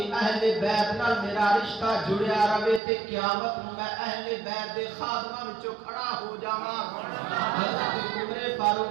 اہل بیت نال میرا رشتہ جڑیا رہے تے قیامت نوں میں اہل بیت دے خادماں وچوں کھڑا ہو جاواں۔ حضرت عمر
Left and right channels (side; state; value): left; drops out; at 2.8 s